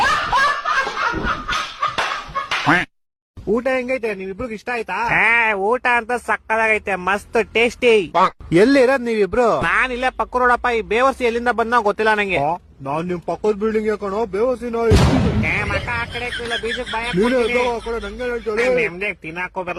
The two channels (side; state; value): both; identical; correlation 1.00